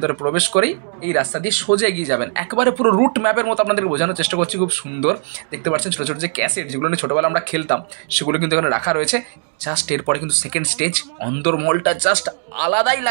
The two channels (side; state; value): left; silent; 67 dB below the other